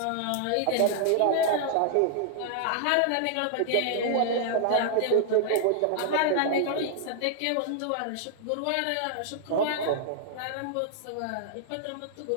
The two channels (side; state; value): both; different; correlation -0.01